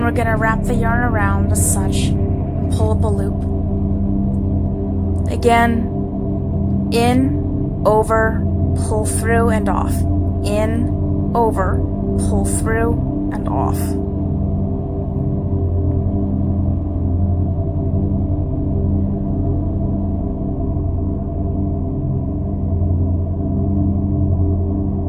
we're going to wrap the yarn around as such and pull up a loop. Again, in, over, pull through and off. In, over, pull through and off.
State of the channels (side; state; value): both; identical; correlation 1.00